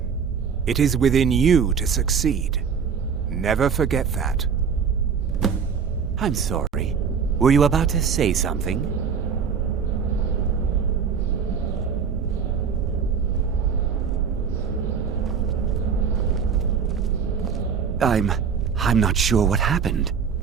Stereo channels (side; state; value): left; quieter; 6.5 dB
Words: It is within you to succeed. Never forget that. I'm sorry. Were you about to say something? I'm not sure what happened.